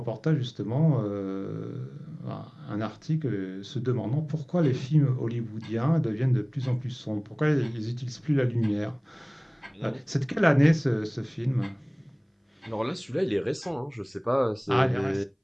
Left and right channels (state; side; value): identical; both; correlation 1.00